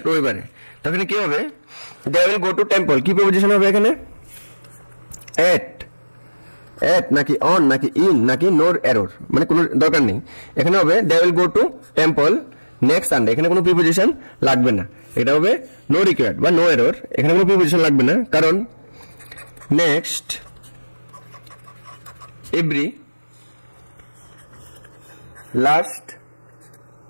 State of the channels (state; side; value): inverted; both; correlation -1.00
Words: রবিবারে। তখন কি হবে? They will go to temple, কি প্রিপোজিশন হবে এখানে? এট নাকি অন নাকি ইন নাকি নোর এরর, মানে কোনো দরকার নেই। এখানে হবে they will go to temple next Sunday. এখানে কোনো প্রিপোজিশন লাগবে না, এটা হবে নো রিকোয়ার্ড বা নো এরর। এখানে কোনো প্রিপোজিশন লাগবে না, কারণ next, every, last,